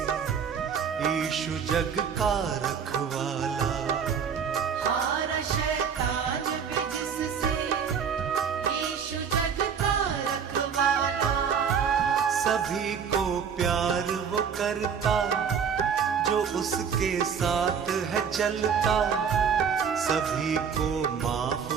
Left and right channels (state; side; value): quieter; left; 7.0 dB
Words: यीशु जग का रखवाला। हारा शैतान भी जिससे, यीशु जग का रखवाला। सभी को प्यार वो करता जो उसके साथ है चलता, सभी को माफ